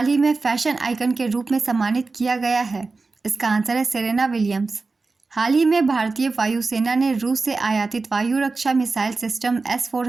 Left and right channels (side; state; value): left; quieter; 3.9 dB